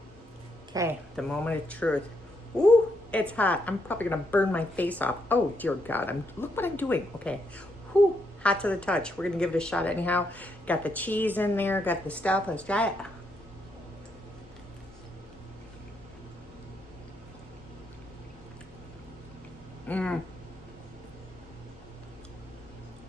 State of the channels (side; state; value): right; noise; hum, 27 dB below the sound